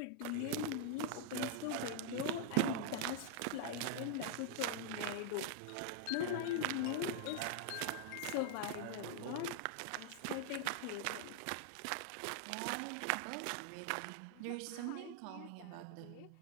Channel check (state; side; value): different; both; correlation 0.00